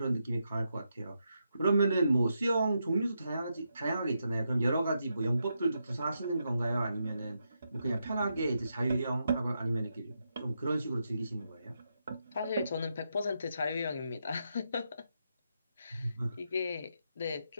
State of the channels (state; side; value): inverted; both; correlation -0.83